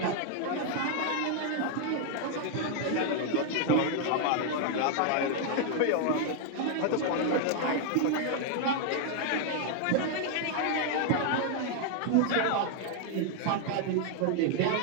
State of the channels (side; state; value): both; different; correlation 0.00